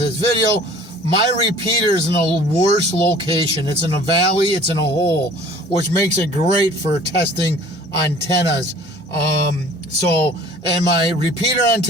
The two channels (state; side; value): normal; both; correlation 0.49